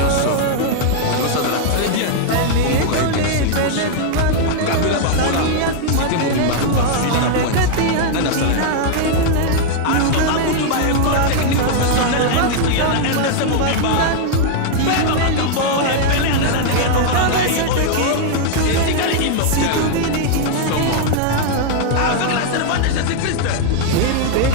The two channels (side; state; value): both; different; correlation -0.01